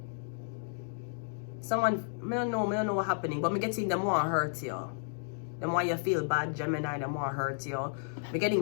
Someone, I don't know what's happening, but I'm getting them want to hurt you. Them why you feel bad, Gemini, them want to hurt you. I'm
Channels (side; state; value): right; silent; digital silence